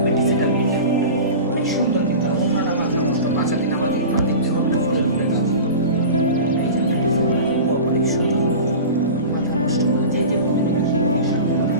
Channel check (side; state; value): both; inverted; correlation -0.32